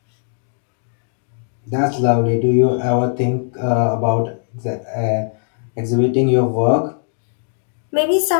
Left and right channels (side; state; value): right; silent; digital silence